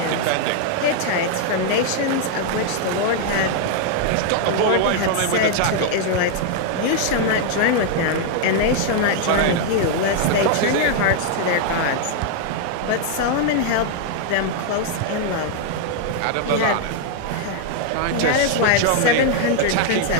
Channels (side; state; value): both; different; correlation 0.00